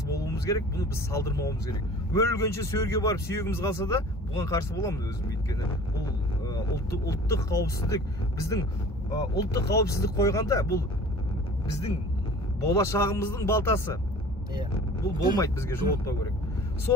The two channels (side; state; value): both; normal; correlation 0.44